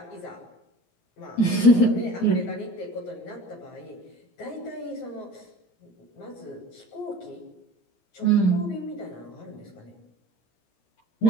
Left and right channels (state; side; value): late; right; 17 ms